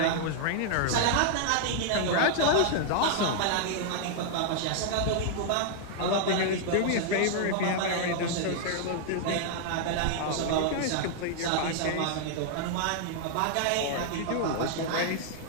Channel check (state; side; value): different; both; correlation -0.01